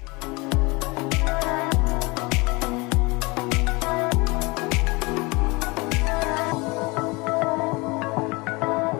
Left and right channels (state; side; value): quieter; right; 25.6 dB